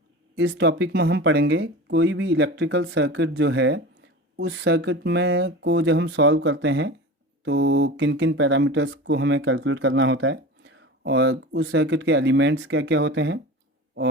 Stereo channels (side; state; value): both; normal; correlation 0.32